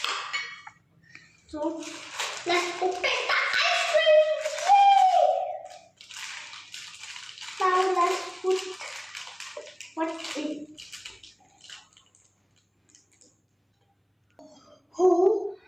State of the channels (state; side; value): identical; both; correlation 1.00